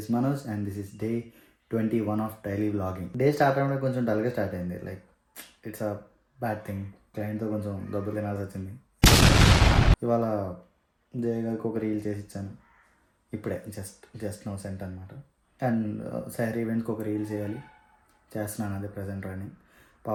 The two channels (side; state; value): both; identical; correlation 1.00